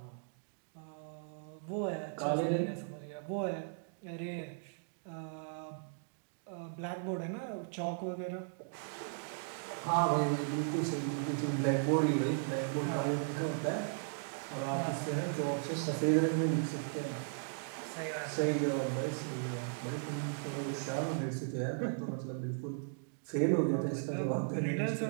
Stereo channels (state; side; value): silent; left; digital silence